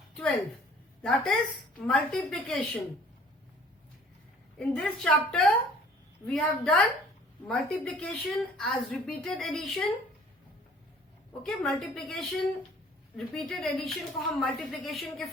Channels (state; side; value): normal; both; correlation 0.53